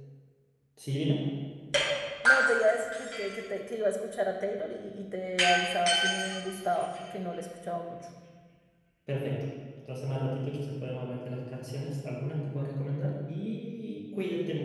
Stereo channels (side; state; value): both; identical; correlation 1.00